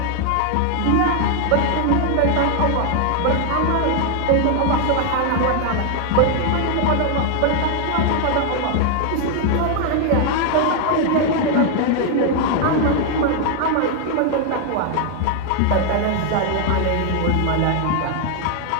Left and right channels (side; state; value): both; different; correlation 0.00